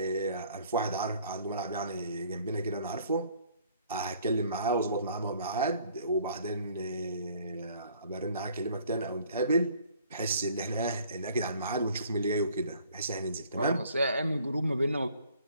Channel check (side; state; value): both; inverted; correlation -0.58